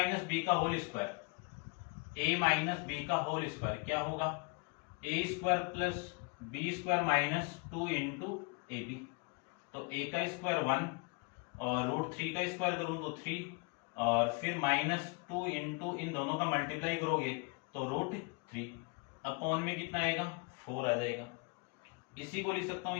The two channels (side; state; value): right; quieter; 31.3 dB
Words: बी का whole square, a minus B का होल स्क्वायर क्या होगा a square plus B square minus 2 into A B. तो a का स्क्वायर 1 और रूट 3 का स्क्वायर करूं तो 3 और फिर माइनस 2 इंटू इन दोनों का मल्टीप्लाई करोगे तो रूट 3 अपॉन में कितना आएगा 4 आ जाएगा। इसी को लिख सकता हूं